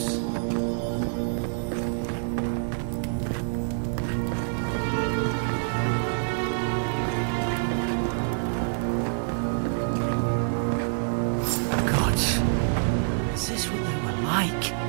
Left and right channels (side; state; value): left; silent; 60 dB below the other